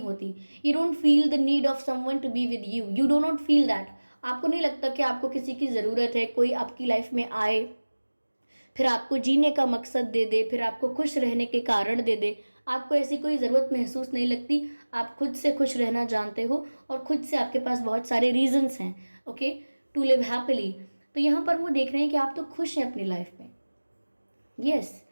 होती। You don't feel the need of someone to be with you, you do not feel that. आपको नहीं लगता कि आपको किसी की ज़रूरत है, कोई आपकी लाइफ में आए, फिर आपको जीने का मकसद दे दे, फिर आपको खुश रहने के कारण दे दे। आपको ऐसी कोई ज़रूरत महसूस नहीं लगती, आप खुद से खुश रहना जानते हो और खुद से आपके पास बहुत सारे रीजंस हैं, ओके, टू लिव हैप्पीली। तो यहाँ पर वो देख रहे हैं कि आप तो खुश हैं अपनी लाइफ में, यस,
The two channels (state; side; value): inverted; both; correlation -1.00